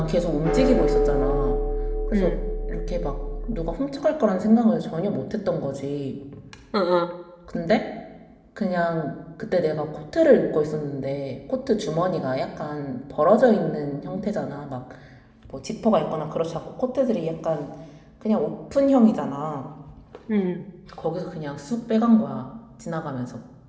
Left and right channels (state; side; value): identical; both; correlation 1.00